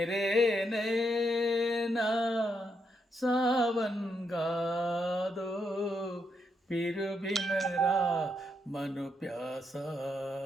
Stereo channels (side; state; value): both; normal; correlation 0.79